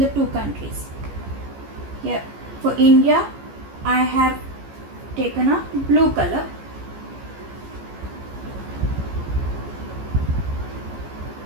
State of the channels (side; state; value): left; late; 14 ms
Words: the two countries. Here for India I have taken a blue color.